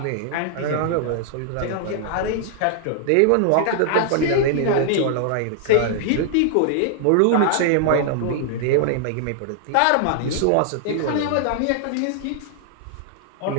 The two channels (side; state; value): both; different; correlation -0.01